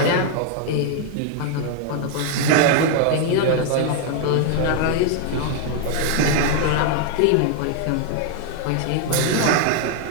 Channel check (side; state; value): both; different; correlation 0.00